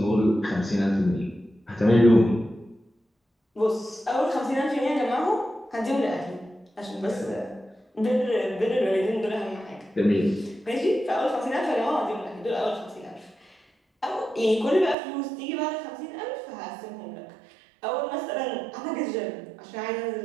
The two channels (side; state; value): left; drops out; at 15.0 s